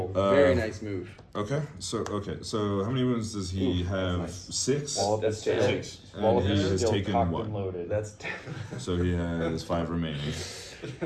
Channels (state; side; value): identical; both; correlation 1.00